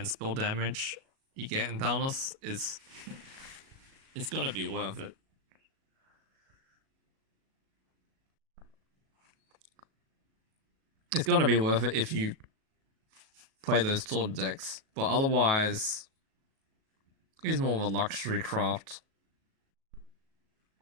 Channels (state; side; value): late; left; 37 ms